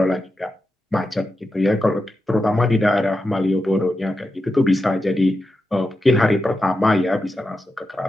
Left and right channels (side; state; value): both; normal; correlation 0.89